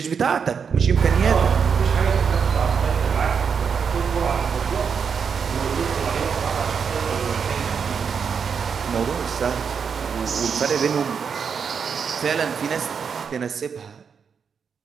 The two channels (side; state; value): left; quieter; 6.4 dB